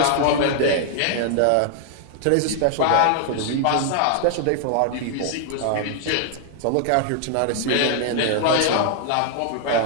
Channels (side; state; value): both; different; correlation 0.00